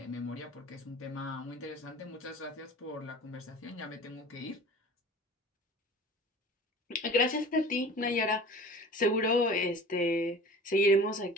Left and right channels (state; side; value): normal; both; correlation 0.41